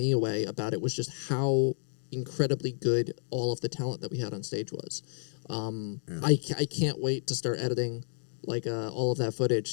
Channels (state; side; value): silent; right; digital silence